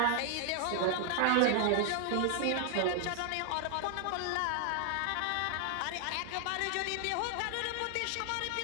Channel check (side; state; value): both; different; correlation 0.00